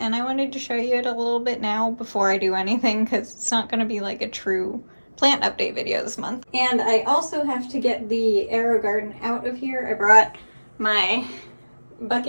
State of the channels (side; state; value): both; inverted; correlation -1.00